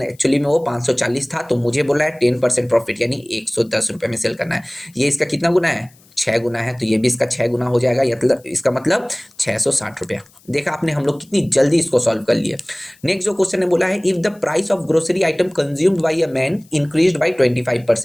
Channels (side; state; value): left; noise; hiss, 29 dB below the sound